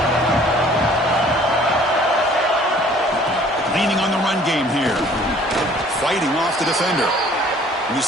Leaning on the run game here. Fighting off the defender. And the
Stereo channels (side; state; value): both; normal; correlation 0.54